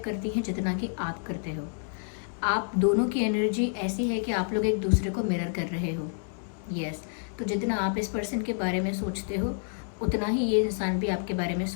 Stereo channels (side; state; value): right; silent; digital silence